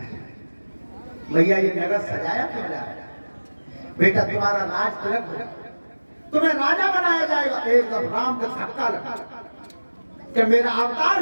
भैया ये नगर सजाया क्यों जा रहा है? बेटा तुम्हारा राज तिलक हो, तुम्हें राजा बनाया जाएगा। एकदम राम का धक्का लगा कि मेरा अवतार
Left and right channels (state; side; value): inverted; both; correlation -1.00